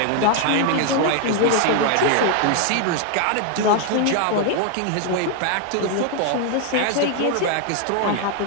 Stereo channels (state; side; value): different; both; correlation 0.00